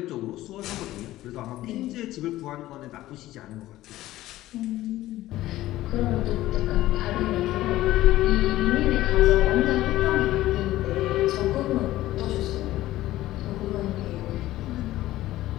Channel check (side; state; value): right; quieter; 15.6 dB